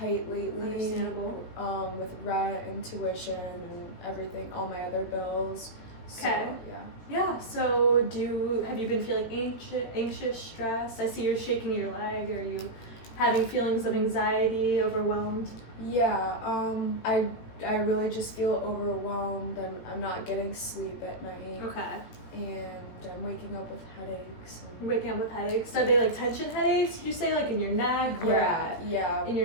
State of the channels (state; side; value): late; right; 18 ms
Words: lately. Understandable. With rent and tuition and everything, all my other bills. So, Okay. yeah. Yeah, so have you been feeling anxious, stressed? I see you're shaking your leg. Are you having feelings of anxiety, overwhelmed? Yeah, I really just feel overwhelmed. I'm not getting sleep at night. Okay. And I'm waking up with headaches. You're waking up with headaches. Are they like tension headaches? Did you say like in your neck? Where at? Yeah. In your